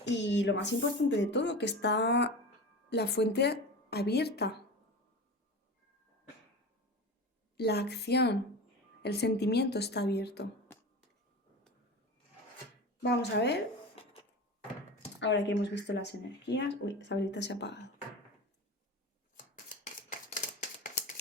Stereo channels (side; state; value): both; normal; correlation 0.30